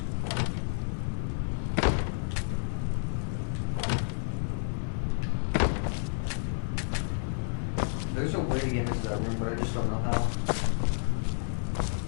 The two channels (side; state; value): right; silent; digital silence